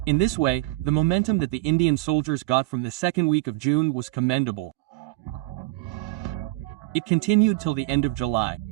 In this way, the momentum that the Indian soldiers got from the second week of June was commendable. It continued till the end of July.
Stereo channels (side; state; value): left; quieter; 20.2 dB